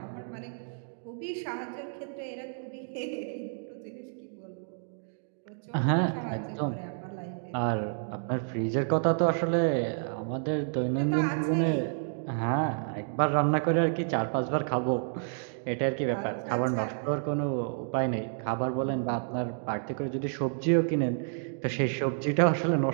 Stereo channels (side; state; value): left; silent; digital silence